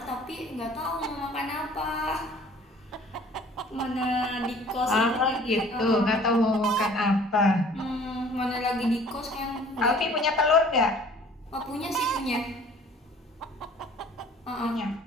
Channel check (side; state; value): both; normal; correlation 0.52